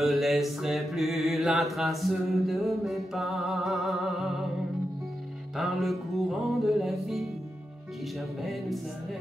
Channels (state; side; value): normal; both; correlation 0.88